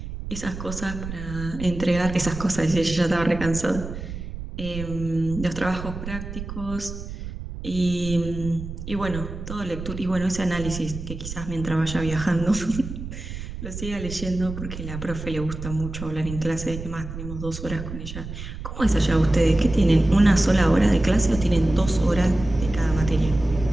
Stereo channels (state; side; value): noise; right; rumble, 9 dB below the sound